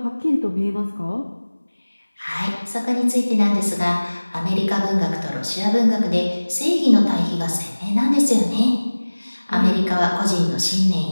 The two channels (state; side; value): inverted; both; correlation -1.00